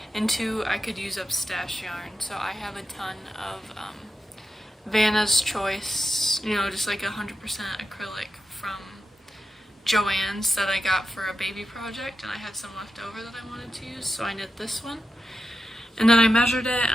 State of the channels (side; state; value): both; normal; correlation 0.90